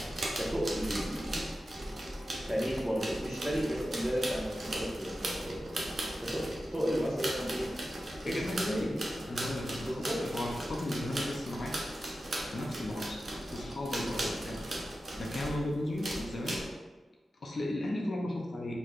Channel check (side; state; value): both; normal; correlation 0.92